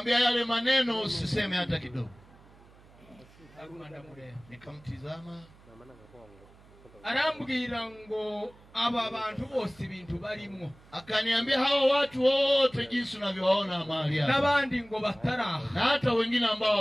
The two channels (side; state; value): right; noise; hum, 25 dB below the sound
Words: yale maneno usiseme hata kidogo. Nikamtizama. Arambwira ngo aba bantu bose ibintu barimo. Akaniambia hawa watu wote jinsi unavyowaona mahali hapa. Nabandi ngo bataraha. Na hata wengine ambao